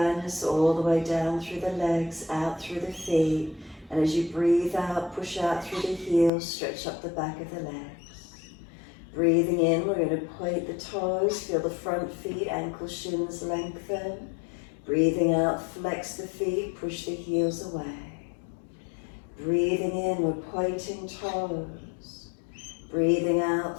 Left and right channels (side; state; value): right; drops out; at 6.3 s